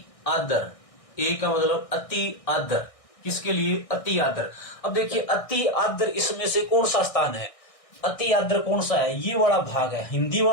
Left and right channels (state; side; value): late; right; 1.6 ms